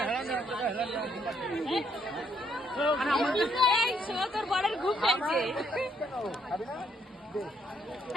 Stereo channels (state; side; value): normal; both; correlation 0.71